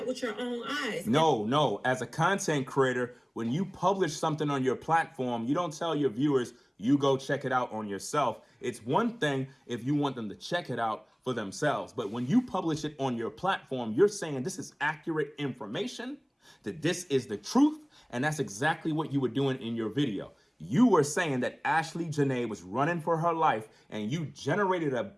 with your own eyes. No. As a content creator, when you publish something on your platform, you don't tell your viewers, you go check it out on yourself. It's one thing if you want them to check it out for themselves. But when you publish it on your platform, you're saying this is accurate information, that this is the truth. And that's exactly what you were doing in your video. You were saying that Ashlee Jenae was running for her life, and you generated a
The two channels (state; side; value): identical; both; correlation 1.00